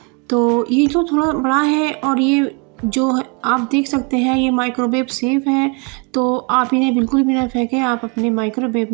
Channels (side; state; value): left; quieter; 32.8 dB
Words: तो ये जो थोड़ा बड़ा है और ये जो आप देख सकते हैं ये माइक्रोवेव सेफ है। तो आप इन्हें बिल्कुल भी ना फेंकें, आप अपने माइक्रोवेव